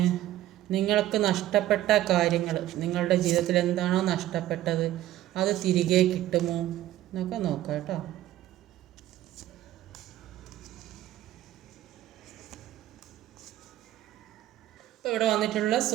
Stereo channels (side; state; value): left; quieter; 13.8 dB